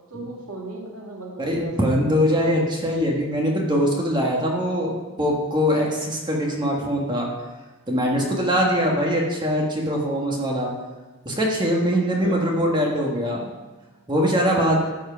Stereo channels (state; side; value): normal; both; correlation 0.41